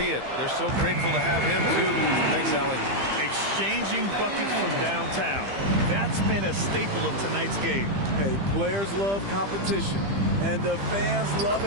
it. They're so grateful to have him, too. Thanks, Allie. Exchanging buckets from downtown. That's been a staple of tonight's game. Hey, players love competition. And the fans love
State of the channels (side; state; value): left; late; 15 ms